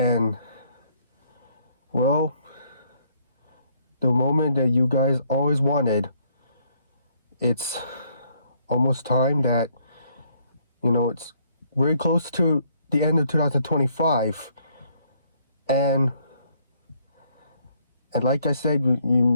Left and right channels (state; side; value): inverted; both; correlation -0.67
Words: well, the moment that you guys always wanted, it's almost time that, it's very close to the end of 2025, and like I said,